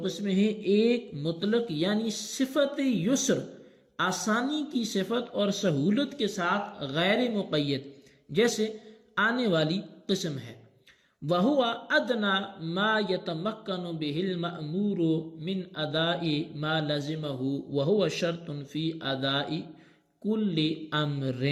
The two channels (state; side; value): identical; both; correlation 1.00